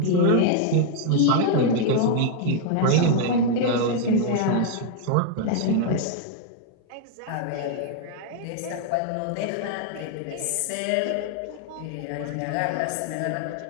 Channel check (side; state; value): both; different; correlation 0.00